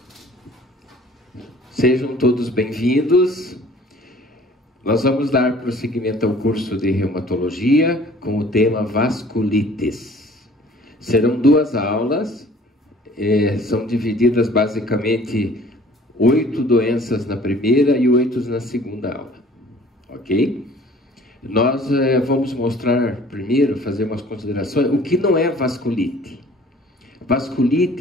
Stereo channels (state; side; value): normal; both; correlation 0.51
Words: sejam todos bem-vindos. Nós vamos dar prosseguimento ao curso de reumatologia com o tema vasculites. Serão 2 aulas, são divididas basicamente 8 doenças na primeira e 8 na segunda aula, ok? Nós vamos mostrar primeiro, fazer umas considerações, o que não é vasculite. Vasculite